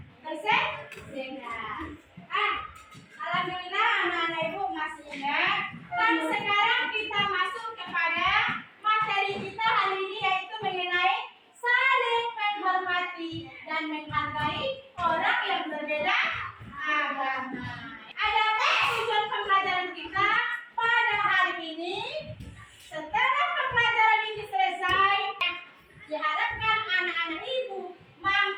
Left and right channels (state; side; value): identical; both; correlation 1.00